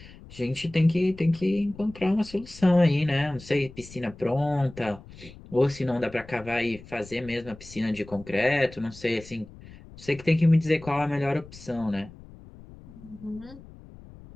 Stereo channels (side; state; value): left; noise; rumble, 19 dB below the sound